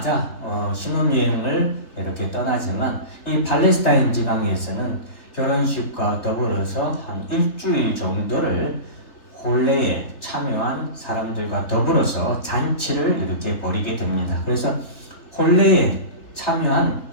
신혼여행을 이렇게 떠나지만 이 팔레스타인 지방에서는 결혼식과 더불어서 한 일주일 정도를 혼례에 참여한 사람들과 더불어서 잔치를 이렇게 벌이게 됩니다. 그래서 혼례에 참여한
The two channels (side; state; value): right; late; 3.3 ms